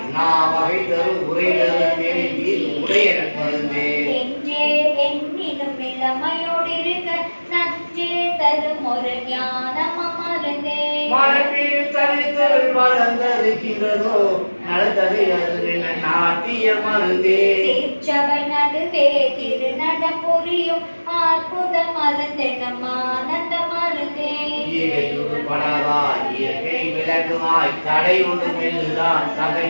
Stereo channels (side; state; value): both; inverted; correlation -1.00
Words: வகை தரும் உரைதரு நெருங்கில் உடைய மருந்தே எங்கே எண்ணினும் இளமையோடு இருக்க நஞ்சே தரும் ஒரு ஞானம் மருந்தே மரபில் தனித்தல் வளர்ந்திருக்கிறதோ நடந்தது அது நாட்டிய மருந்தே சீர்ச்சபை நடுவே திருநடம் புரியும் அற்புத மருந்தெனும் ஆனந்த மருந்தே படவாய் இயற்கை விளக்குமாய் தடை ஒன்று மெல்லுதான்